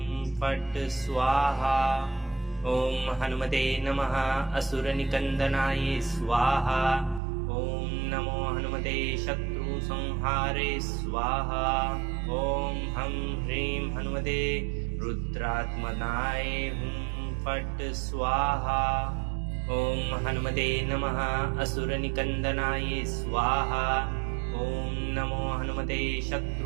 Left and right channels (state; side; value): drops out; left; at 7.2 s